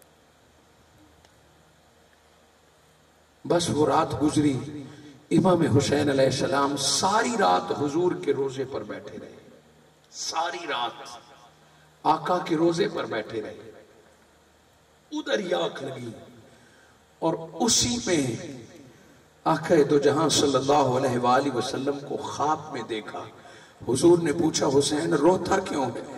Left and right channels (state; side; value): identical; both; correlation 1.00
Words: بس وہ رات گزری، امام حسین علیہ السلام ساری رات حضور کے روزے پر بیٹھے رہے، ساری رات آقا کے روزے پر بیٹھے رہے۔ ادھر ہی آنکھ لگی اور اسی میں آقا دو جہاں صلی اللہ علیہ وآلہ وسلم کو خواب میں دیکھا۔ حضور نے پوچھا حسین روتا کیوں